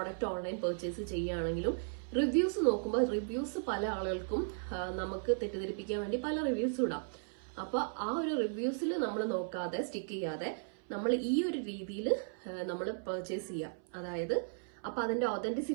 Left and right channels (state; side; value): silent; left; 54 dB below the other